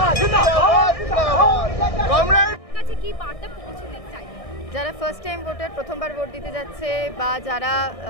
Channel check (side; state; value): right; late; 1.6 ms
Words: যারা ফার্স্ট টাইম ভোটার, প্রথমবার ভোট দিতে যাচ্ছে, বা যারা